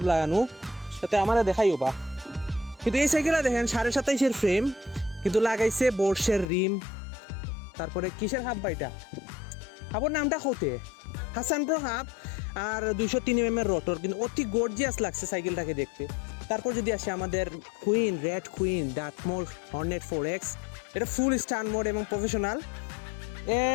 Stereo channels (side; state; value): right; drops out; at 6.5 s